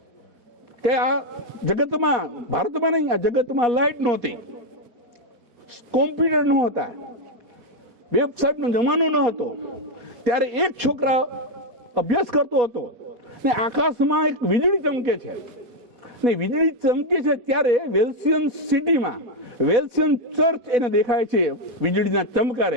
કે આ જગતમાં, ભારતમાં નહીં, આ જગતમાં લાઈટ નહોતી, કોમ્પ્યુટર નહોતા, વેબસાઇટનો જમાનો ન હતો. ત્યારે એક છોકરા અભ્યાસ કરતો હતો ને આકાશમાં એક વીજળી ચમકે છે ને વીજળી ચમકે છે ત્યારે વેલ્સિયન સિટીમાં વેલ્સિયન ચર્ચ એને દેખાય છે વીજળીના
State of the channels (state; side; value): late; left; 4.2 ms